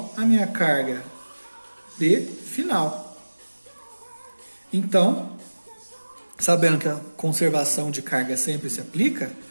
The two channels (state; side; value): inverted; both; correlation -1.00